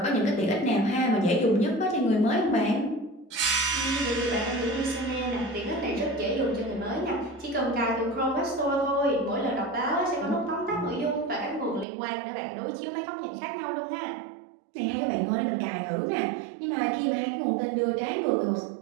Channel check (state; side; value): drops out; left; at 11.9 s